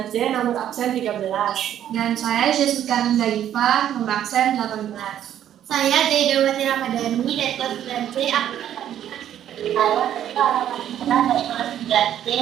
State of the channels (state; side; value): quieter; left; 10.7 dB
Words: nomor absen 13. Dan saya Jessica Nindaifa, nomor absen 18. Saya Jaidawati Ramadhani dari kelas 9C,